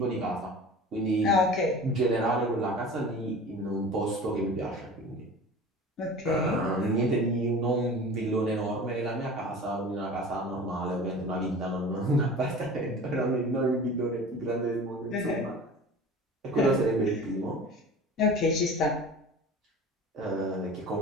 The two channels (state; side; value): normal; both; correlation 0.38